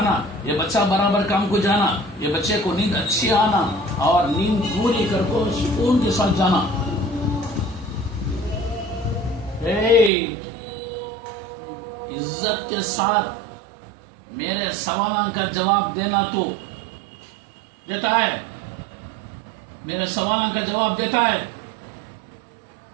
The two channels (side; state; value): left; drops out; at 10.1 s